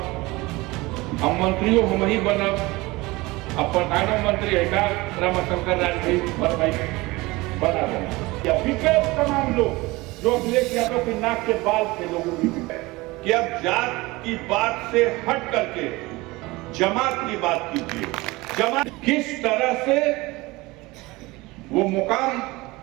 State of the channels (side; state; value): left; quieter; 21.8 dB